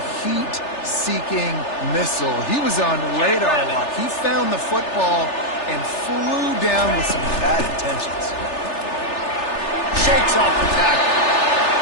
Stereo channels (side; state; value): right; late; 3.4 ms